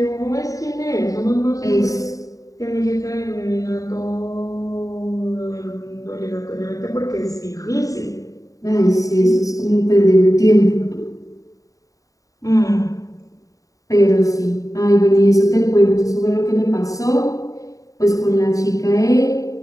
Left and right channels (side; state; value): right; late; 0.16 ms